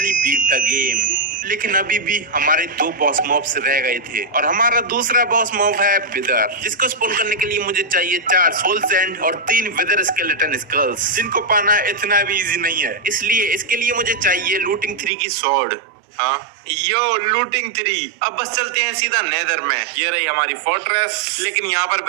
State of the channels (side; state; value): left; drops out; at 15.1 s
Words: beat the game। लेकिन अभी भी हमारे 2 बॉस मॉब्स रह गए थे और हमारा दूसरा बॉस मॉब है विदर, जिसको स्पॉन करने के लिए मुझे चाहिए 4 सोल सैंड और 3 विदर स्केलेटन स्कल्स, जिनको पाना इतना भी इजी नहीं है। इसलिए इसके लिए मुझे चाहिए लूटिंग 3 की स्वॉर्ड। हाँ यो लूटिंग 3। अब बस चलते हैं सीधा नेदर में। ये रही हमारी फोर्ट्रेस। लेकिन यहाँ पर